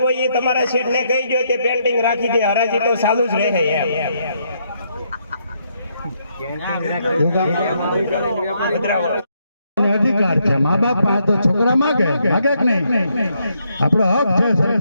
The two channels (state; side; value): inverted; both; correlation -0.75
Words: હોય એ તમારા શેઠ ને કહી ગયો તે પેન્ટિંગ રાખી દે. હરાજી તો ચાલુ જ રહે એમ. અધિકાર છે મા બાપ પાસે તો છોકરા માગે કે નહીં? આપણો હક છે